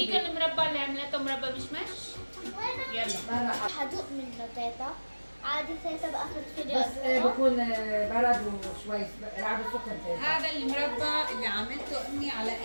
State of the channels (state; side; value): inverted; both; correlation -1.00